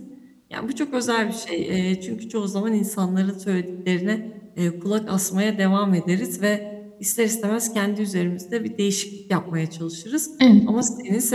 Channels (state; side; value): identical; both; correlation 1.00